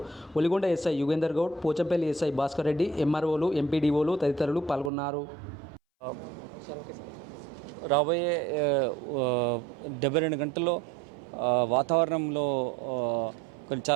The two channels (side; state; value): left; drops out; at 4.9 s